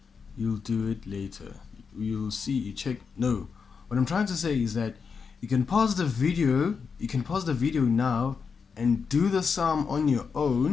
you'll do it later. You'll see, check. No, what I'm trying to say is that you can pause the video now and do the sum on your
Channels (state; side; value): quieter; right; 5.7 dB